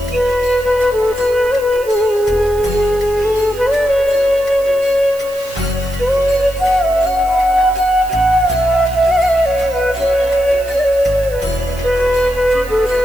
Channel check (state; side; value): noise; right; hiss, 19 dB below the sound